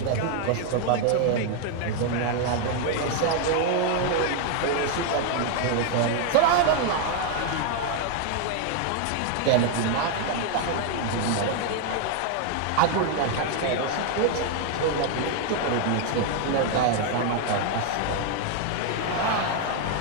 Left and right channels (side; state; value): both; different; correlation 0.00